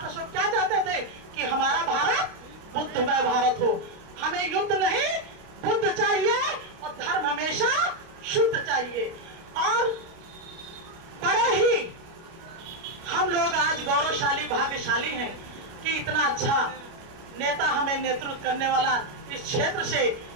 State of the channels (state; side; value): late; left; 29 ms